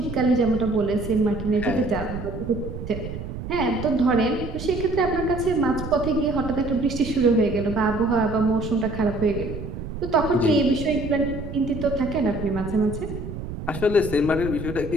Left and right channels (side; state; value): right; noise; rumble, 8 dB below the sound